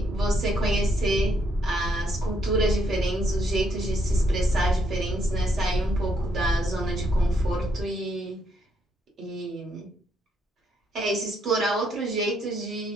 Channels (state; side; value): normal; both; correlation 0.74